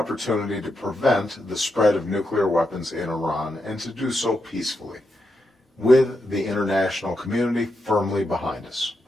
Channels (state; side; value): normal; both; correlation 0.84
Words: to prevent the spread of nuclear weapons in Iran and to do so peacefully, with the international community firmly behind us.